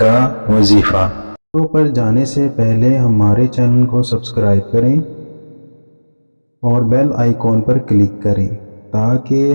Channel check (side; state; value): both; inverted; correlation -1.00